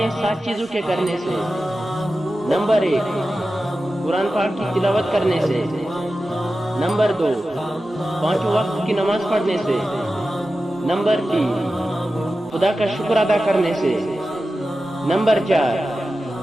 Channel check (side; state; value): both; normal; correlation 0.93